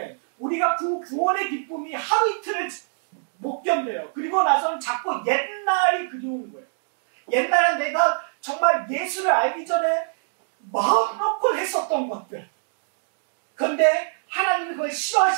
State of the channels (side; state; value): left; silent; digital silence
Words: 우리가 그 구원의 기쁨이 하루 이틀을 못 견뎌요. 그리고 나서는 자꾸 옛날이 그리운 거예요. 옛날에 내가 정말 예수를 알기 전에 마음 놓고 했었던 것들. 그런데 하나님이 그걸